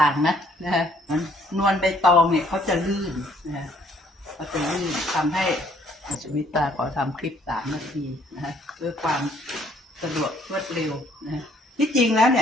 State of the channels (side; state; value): both; normal; correlation 0.64